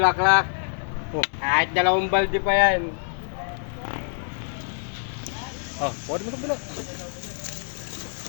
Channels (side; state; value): right; silent; digital silence